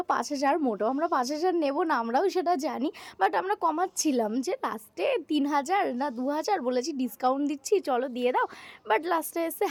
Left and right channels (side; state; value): both; identical; correlation 1.00